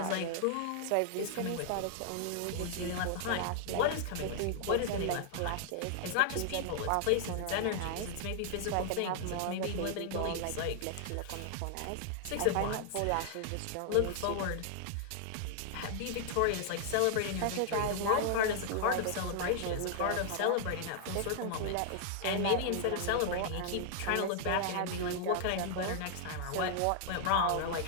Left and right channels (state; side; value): different; both; correlation -0.01